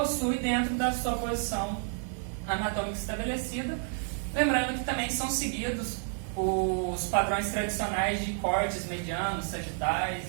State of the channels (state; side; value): silent; left; 58 dB below the other